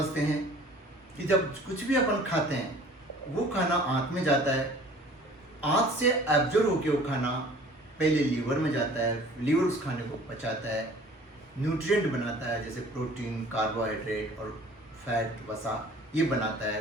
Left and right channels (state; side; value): normal; both; correlation 0.49